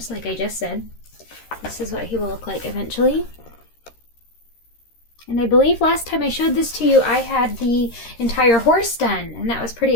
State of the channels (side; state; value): right; late; 13 ms